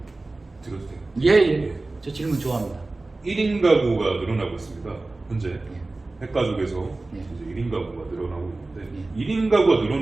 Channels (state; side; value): quieter; left; 3.2 dB